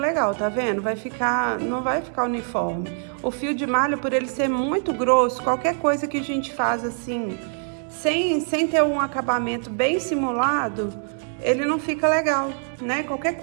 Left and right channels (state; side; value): silent; left; 58 dB below the other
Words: tá vendo? Vai ficar... Não vai ficar uniforme. O fio de malha, por ele ser muito grosso, qualquer coisa que a gente faz assim, sem ter um acabamento bem simulado, ele não fica legal, né? Qualquer